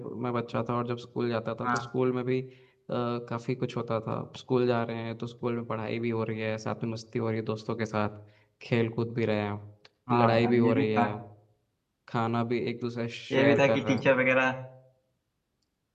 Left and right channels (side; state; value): both; identical; correlation 1.00